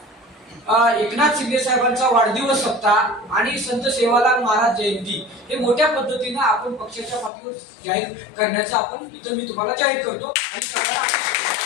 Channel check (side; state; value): right; drops out; at 7.3 s